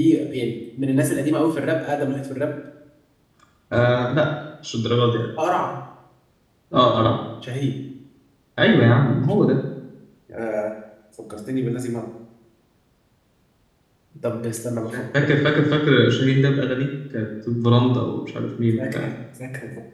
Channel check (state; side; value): identical; both; correlation 1.00